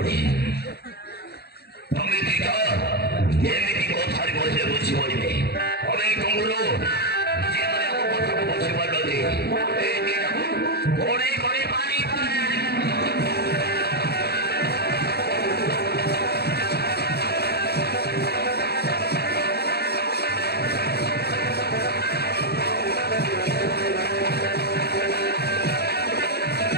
তুমি দিকা এমনি କହିଲେ ବୁଝିପାରିବେ ଆମେ ତୁମରୁ ଯେମାନେ ଆମ କଥାକୁ ବୁଝିପାରୁଛନ୍ତି ଏ ଦିନକୁ ଘୋଡ଼େଇ କରି ପାଣି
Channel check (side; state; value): right; late; 0.47 ms